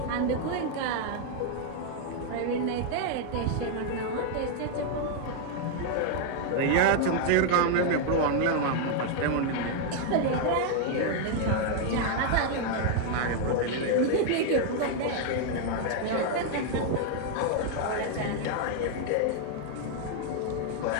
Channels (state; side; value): different; both; correlation 0.00